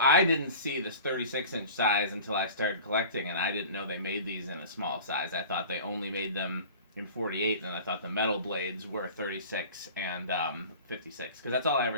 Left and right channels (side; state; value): both; inverted; correlation -0.40